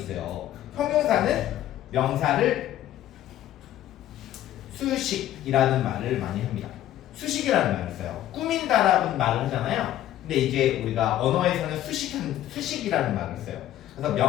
형용사는 명사를 수식이라는 말을 많이 합니다. 수식이라는 말을 써요. 꾸민다라는 말을 하잖아요. 근데 이제 우리가 언어에서는 수식이라는 말을 써요. 그래서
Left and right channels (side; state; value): right; quieter; 12.7 dB